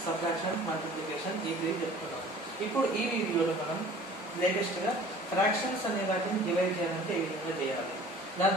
subtraction, multiplication ee chestunnam. Ippudu ee video lo manam latest ga fractions ane vaatini divide cheyalante ee vidhanga cheyali. దాని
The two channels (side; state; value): both; normal; correlation 0.47